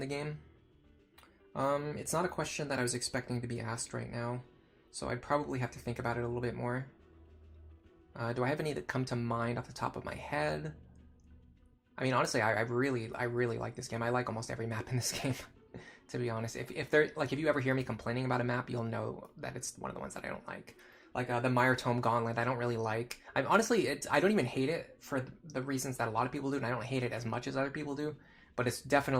game? It's not a question that I was expecting to be asked right now, so I'd probably have to think about it a little bit more. Do I have any that come to mind off the top of my head? I mean, honestly, I really like this game. I like almost every map in this game, to be honest. If you ever hear me complaining about a map, you'll know that it's one of the ones that I don't like. Like the Mire Tome Gauntlet, I don't really like. I don't even hate it for the reasons that a lot of people do, and I don't hate it as much as other people do. But it's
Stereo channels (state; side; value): identical; both; correlation 1.00